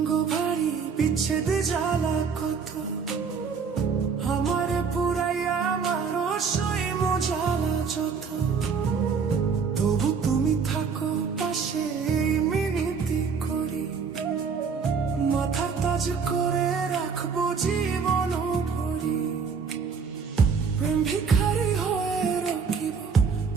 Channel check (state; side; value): quieter; left; 5.7 dB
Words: ভারী, বিচ্ছেদে জ্বালা কত, আমারে পুরাইয়া আমার সই মজালা যত, তবু তুমি থাকো পাশে এই মিনতি করি, মাথার তাজ করে রাখবো জীবন ভরি। প্রেম ভিখারি হয়ে রকিব,